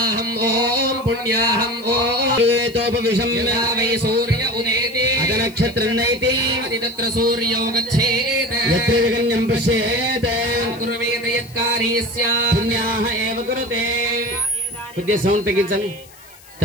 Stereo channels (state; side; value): noise; left; hiss, 23 dB below the sound